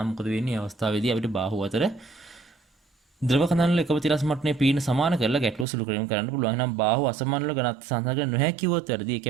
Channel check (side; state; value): left; drops out; at 5.7 s